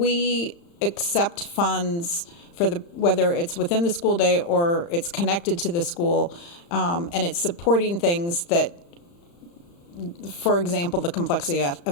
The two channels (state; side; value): late; right; 35 ms